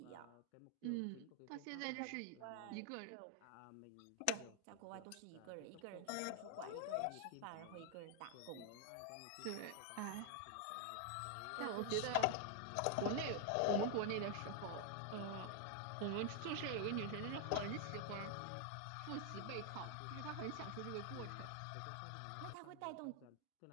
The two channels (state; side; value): different; both; correlation 0.00